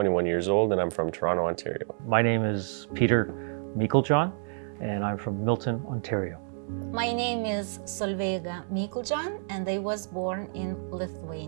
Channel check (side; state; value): left; silent; digital silence